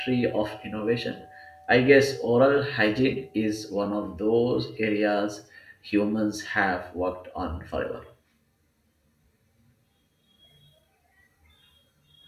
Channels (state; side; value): identical; both; correlation 1.00